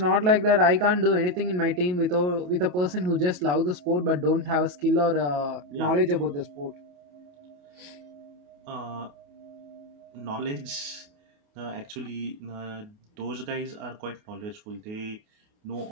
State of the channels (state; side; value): late; left; 28 ms